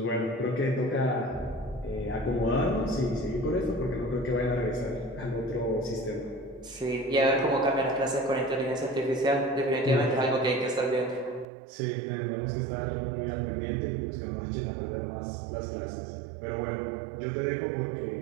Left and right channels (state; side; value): drops out; left; at 11.5 s